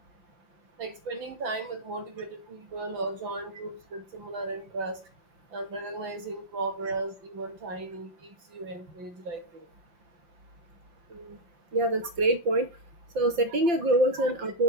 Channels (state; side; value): late; left; 5.8 ms